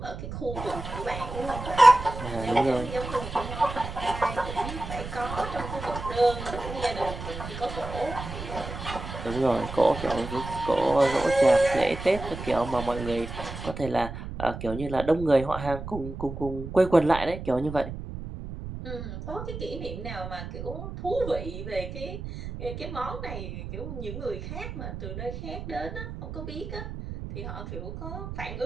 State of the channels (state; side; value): noise; right; rumble, 8 dB below the sound